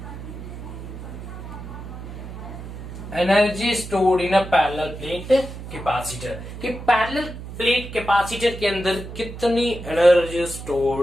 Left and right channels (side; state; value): right; noise; hum, 11 dB below the sound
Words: Energy stored in a parallel plate capacitor, कि पैरेलल प्लेट कैपेसिटर के अंदर कितनी एनर्जी